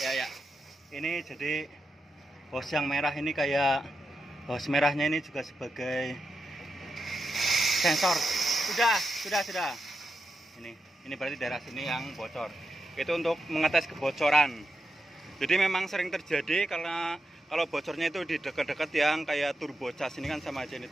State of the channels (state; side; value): normal; both; correlation 0.87